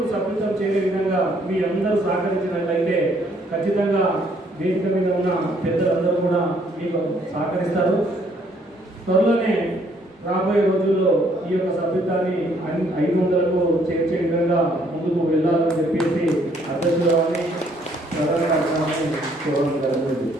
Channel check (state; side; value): normal; both; correlation 0.66